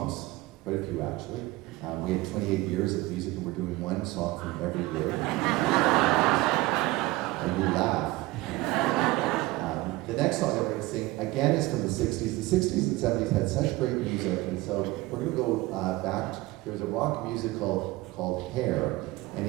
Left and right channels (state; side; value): quieter; left; 19.6 dB